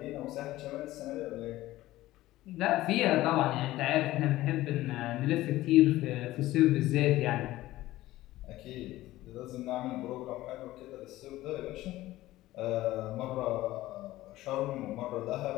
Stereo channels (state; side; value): quieter; right; 16.4 dB